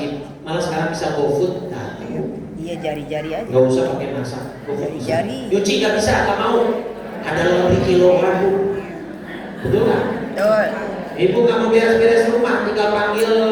malah sekarang bisa GoFood. Nah, iya jari-jari aja. Nggak usah pakai masak. Jari-jari. Nyuci nggak bisa, nggak mau. Ada lebih kilogram, Bu. Betul nggak? Betul. Ibu nggak mau beres-beres rumah, tinggal panggil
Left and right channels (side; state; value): both; identical; correlation 1.00